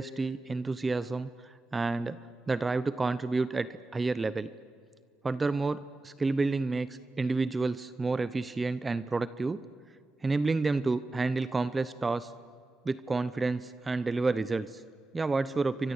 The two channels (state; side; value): quieter; left; 3.2 dB